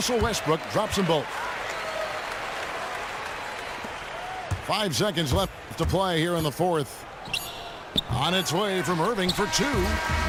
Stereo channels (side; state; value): both; identical; correlation 1.00